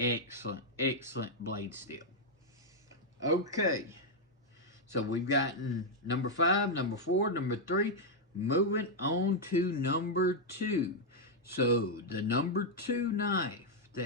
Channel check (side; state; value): both; normal; correlation -0.01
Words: blade steel. Okay, so we've gotten number 5, number 4, number 3. Moving on to number 2. So the number 2 knife